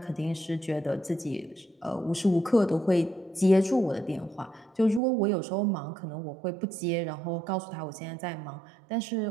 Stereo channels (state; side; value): drops out; left; at 5.0 s